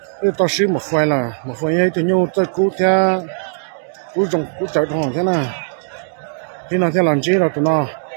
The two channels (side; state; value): left; silent; 67 dB below the other